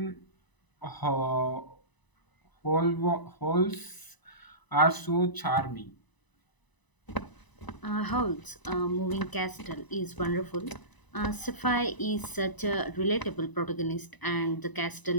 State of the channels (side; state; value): right; late; 1.0 ms